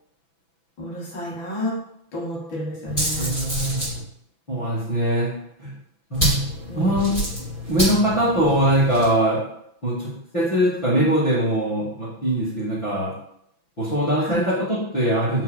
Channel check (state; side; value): late; right; 6.0 ms